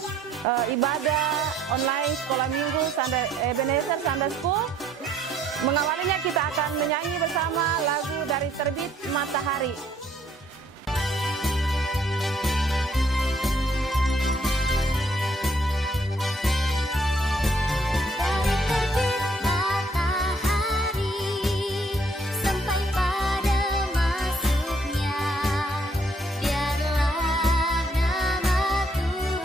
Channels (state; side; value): normal; both; correlation 0.65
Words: ibadah online sekolah minggu Ebenezer Sunday School. Mengawalinya kita akan menyanyi bersama lagu dari Terbit Matahari.